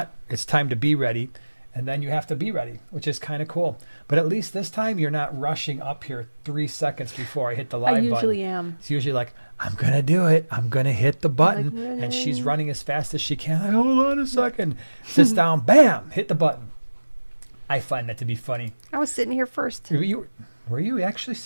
It's time to be ready. And then you have to be ready, which is kind of cool. But at least this time you're not rushing up here 3 seconds before I hit the live button. I usually am. It's usually like, I'm going to do it. I'm going to hit the button. And she's running as fast as she can. Like, hold on a second. Sits down, bam, hit the button. I find that to be funny. I was sitting here first. Were you actually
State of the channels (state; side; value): inverted; both; correlation -1.00